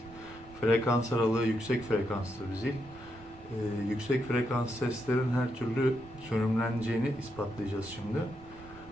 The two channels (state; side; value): normal; both; correlation 0.81